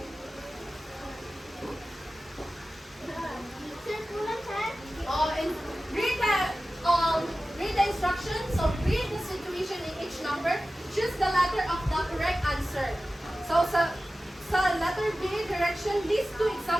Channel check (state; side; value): normal; both; correlation 0.95